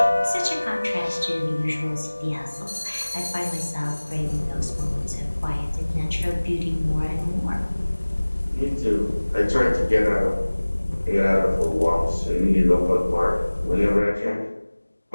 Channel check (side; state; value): both; inverted; correlation -1.00